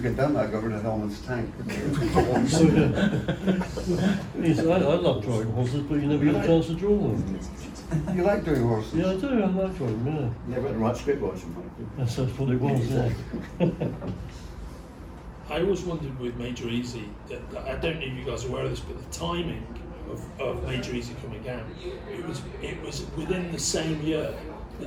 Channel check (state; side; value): identical; both; correlation 1.00